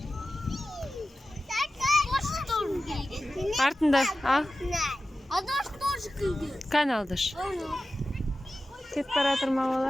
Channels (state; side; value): normal; both; correlation 0.94